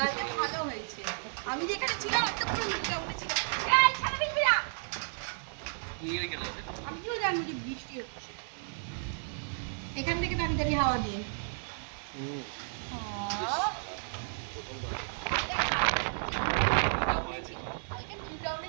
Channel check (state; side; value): silent; left; digital silence